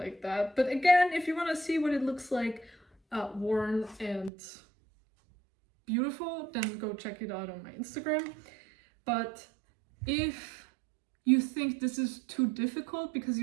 that. But again, if you want to see what it looks like worn and beautiful, then go check it out on my Instagram. But if you think this is too difficult because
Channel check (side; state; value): left; drops out; at 4.3 s